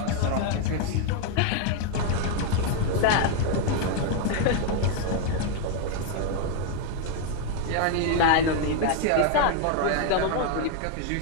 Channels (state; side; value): different; both; correlation 0.01